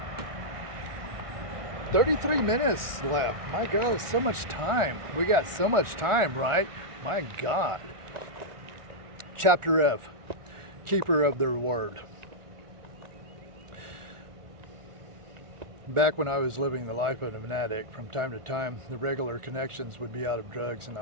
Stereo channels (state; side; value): late; left; 1.4 ms